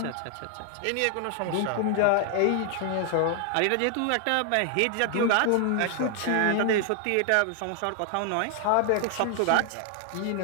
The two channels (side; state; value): both; different; correlation 0.00